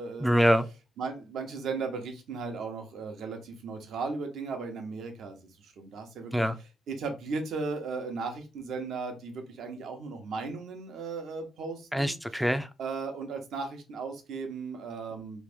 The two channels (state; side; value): normal; both; correlation 0.84